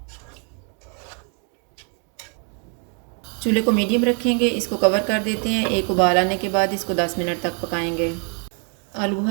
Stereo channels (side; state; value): left; quieter; 40.0 dB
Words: चूल्हे को मीडियम रखेंगे। इसको कवर कर देते हैं। एक उबाल आने के बाद इसको 10 मिनट तक पकाएंगे। आलू